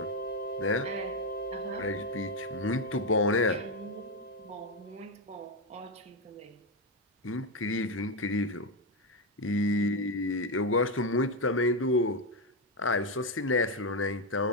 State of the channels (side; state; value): both; normal; correlation 0.07